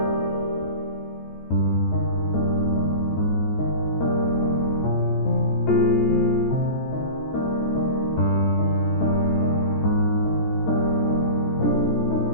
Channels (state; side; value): late; right; 14 ms